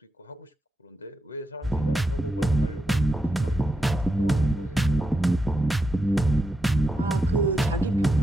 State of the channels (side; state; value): both; normal; correlation 0.85